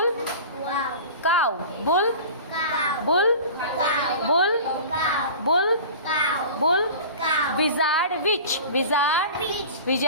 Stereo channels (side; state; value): both; inverted; correlation -0.37